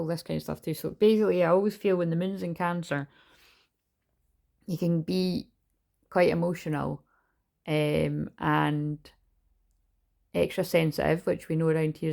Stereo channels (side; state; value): both; identical; correlation 1.00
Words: this kind of stuff too. So basically, I always feel when the moon's in Cancer, you can be quite emotional and extra sensitive, which we know around here